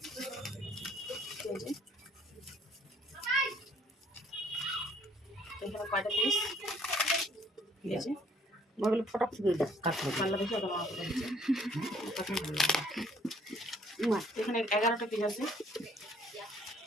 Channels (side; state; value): both; normal; correlation 0.61